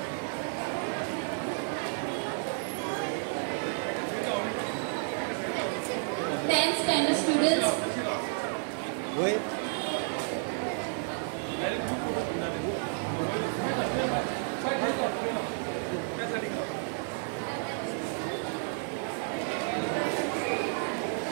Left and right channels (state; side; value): silent; left; 57 dB below the other